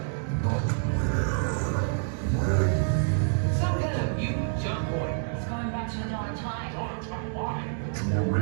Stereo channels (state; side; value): silent; left; digital silence